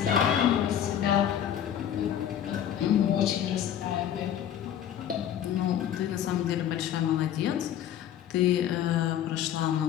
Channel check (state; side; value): quieter; right; 10.1 dB